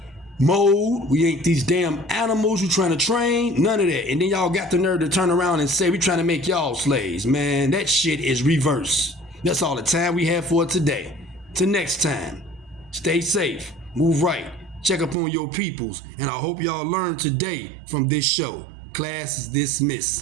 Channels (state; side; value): drops out; left; at 15.2 s